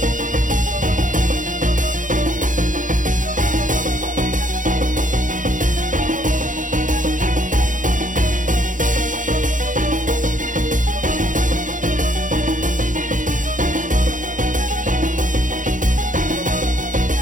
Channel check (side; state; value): left; late; 0.38 ms